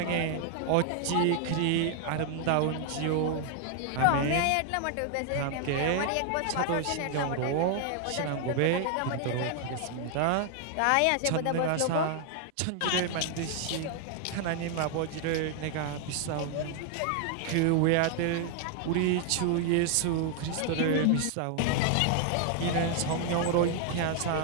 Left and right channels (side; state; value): both; different; correlation 0.00